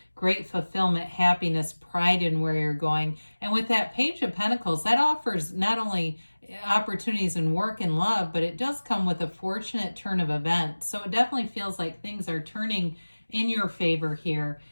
great fulfillment, happiness, pride in where you're going. And with that Page of Pentacles, that offers not only opportunities in work and love, but it does come with a fortunate turn of events. So it definitely feels like things are turning in your favor here.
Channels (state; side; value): inverted; both; correlation -1.00